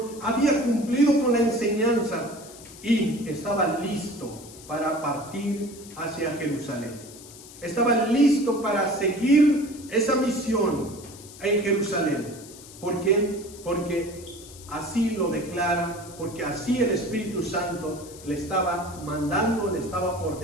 Había cumplido con la enseñanza. Y estaba listo para partir hacia Jerusalén. Estaba listo para seguir esa misión en Jerusalén. ¿Por qué? Porque así lo declara, porque así el Espíritu Santo le estaba mandando, le estaba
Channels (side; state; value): left; noise; hiss, 18 dB below the sound